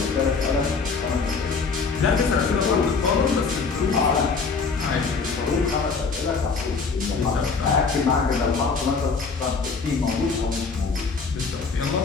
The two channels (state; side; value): quieter; right; 4.8 dB